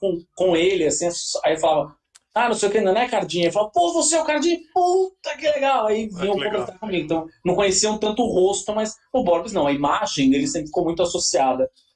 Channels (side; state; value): both; identical; correlation 1.00